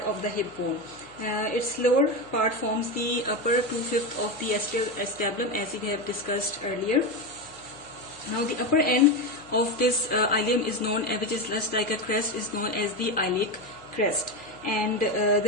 of the hip bone. Its lower part forms the upper 2/5 of the acetabulum, as we have discussed earlier. Now, the upper end of this ilium is known, which is just like a crest, is known as the iliac crest, and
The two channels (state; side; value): noise; left; hum, 25 dB below the sound